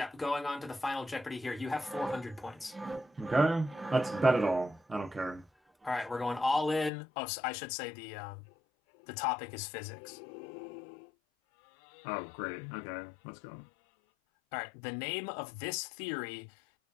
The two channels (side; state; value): right; drops out; at 6.9 s